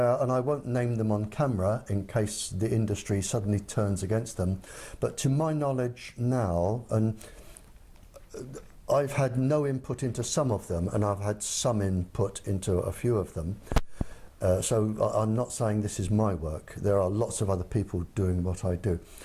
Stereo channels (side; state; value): both; identical; correlation 1.00